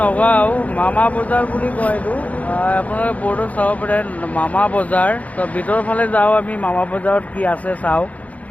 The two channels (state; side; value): late; right; 0.070 ms